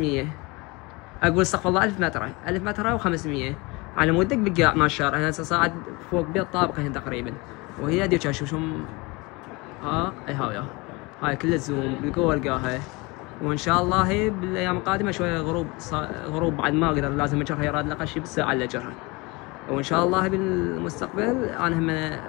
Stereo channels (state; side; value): quieter; right; 25.4 dB